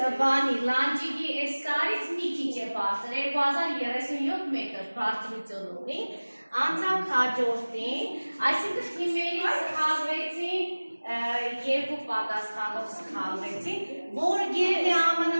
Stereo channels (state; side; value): inverted; both; correlation -1.00